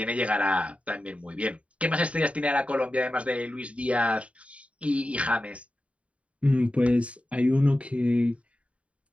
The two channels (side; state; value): left; late; 0.064 ms